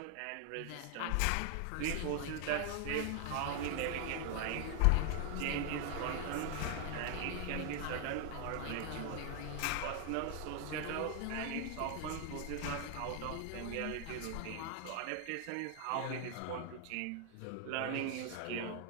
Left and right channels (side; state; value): both; different; correlation 0.00